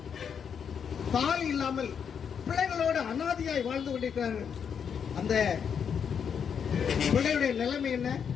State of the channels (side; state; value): right; quieter; 7.3 dB